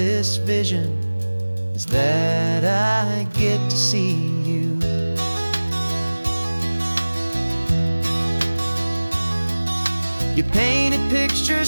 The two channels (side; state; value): both; inverted; correlation -1.00